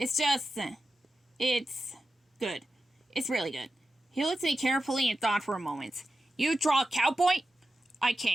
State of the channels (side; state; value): both; normal; correlation 0.92